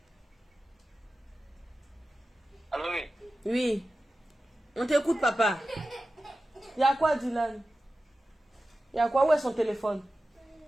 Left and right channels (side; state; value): both; normal; correlation 0.94